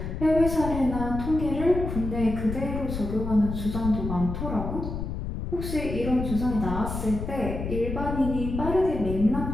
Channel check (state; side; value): noise; left; rumble, 5 dB below the sound